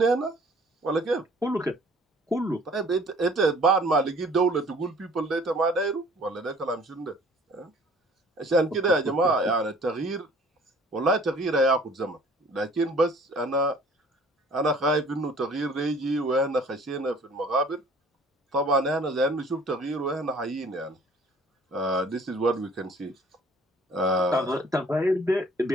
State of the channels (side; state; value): both; normal; correlation 0.53